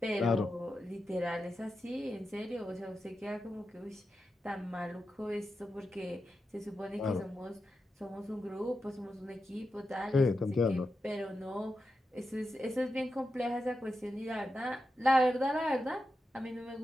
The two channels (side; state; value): both; normal; correlation 0.89